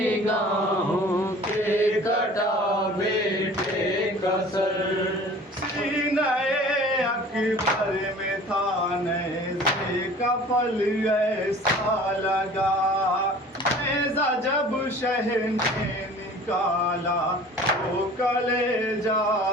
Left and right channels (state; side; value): normal; both; correlation 0.46